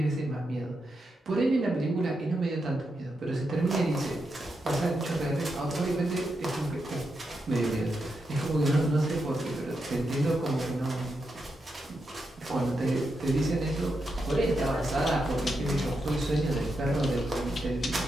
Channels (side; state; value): both; normal; correlation 0.85